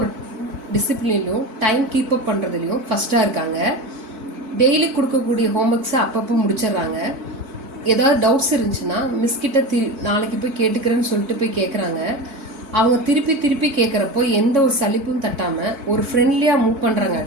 ஒரு டிசிப்ளின்லையும் டைம் கீப் அப் பண்ணுறதுலையும் ஃபஸ்ட்டாக இருக்காங்க. டெய்லி கொடுக்கக்கூடிய ஹோம்ஒர்க்ஸை அப்பப்போ முடிச்சிடுறாங்க. ஏதாவது டவுட்ஸ் இருந்துச்சுன்னா மிஸ்கிட்ட நாளைக்கு போய் கேட்டுக்கிறேன்னு சொல்லிட்டு போய் கேட்குறாங்க. அவங்க திருப்பி கேட்குறப்போ எந்த ஒரு சலிப்பும் தட்டாமல் ஒரு ஃப்ரெண்ட்லியாக மூவ்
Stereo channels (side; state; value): left; late; 4.6 ms